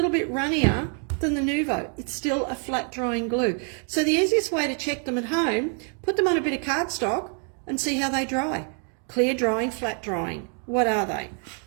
bit runnier than the Nuvo. It's still a flat drying glue. So the easiest way to check them at home, put them on a bit of cardstock and see how they dry. Clear drying, flat drying. What are they?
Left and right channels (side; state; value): left; quieter; 39.9 dB